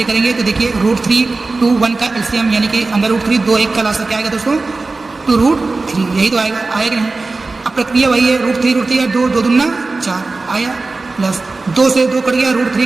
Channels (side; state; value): left; quieter; 3.6 dB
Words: करेंगे, तो देखिए √3 2 1 का एलसीएम यानी कि अंदर √3 2 1 का लासा क्या आएगा दोस्तों, 2√3, यही तो आएगा कि नहीं। अब प्रक्रिया वही है, √3 2 दूना 4 आया, प्लस 2 से 2 कट गया,